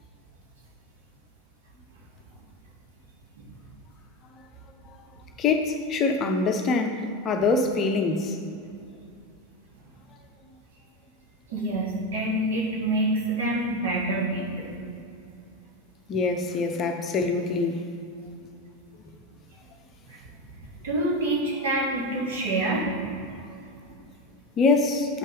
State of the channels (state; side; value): normal; both; correlation 0.19